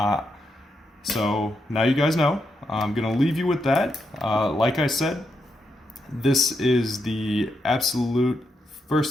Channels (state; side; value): normal; both; correlation 0.83